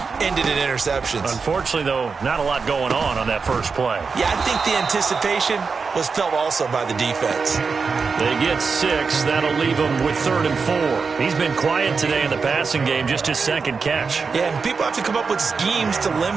ended in interceptions. Unfortunately, though, not a lot going on that first play. Yeah, I think the anticipation was felt also by the defense. They get 6. That'll leave them with 3rd and 4. He's been quiet today in the passing game, just his 2nd catch. Yeah, and people have to come up with schemes to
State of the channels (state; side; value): quieter; left; 5.0 dB